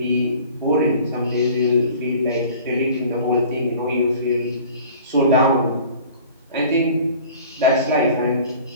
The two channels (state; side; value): inverted; both; correlation -0.46